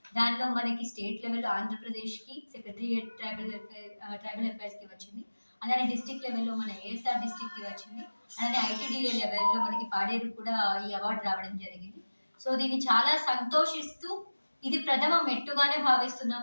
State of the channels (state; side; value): inverted; both; correlation -1.00